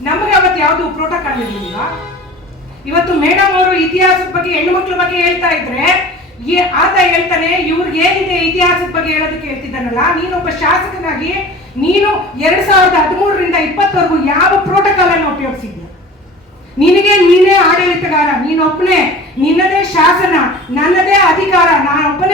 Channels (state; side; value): normal; both; correlation 0.40